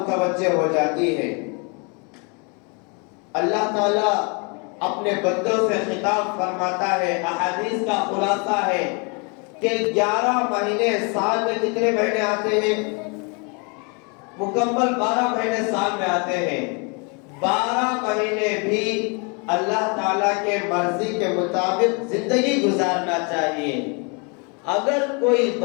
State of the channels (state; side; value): quieter; right; 33.6 dB